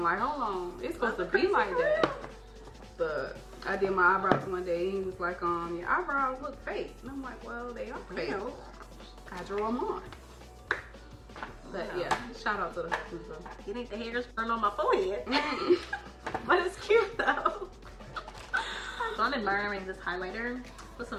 Like, hold on, it's supposed to be like that. But I did my eyebrows one day, and he was like, your eyebrows look fake. And I'm like, well, they are fake. I drew them on. But yeah, shout out to the husband. It ain't the hairs burned on my forehead. But it's cute though. So I'm admiring this highlighter. What's some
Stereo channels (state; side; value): identical; both; correlation 1.00